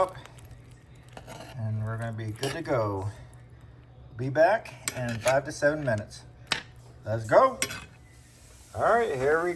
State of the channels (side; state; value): both; identical; correlation 1.00